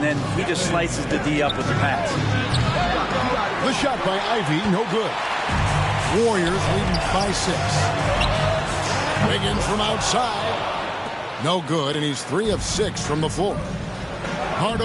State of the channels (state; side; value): identical; both; correlation 1.00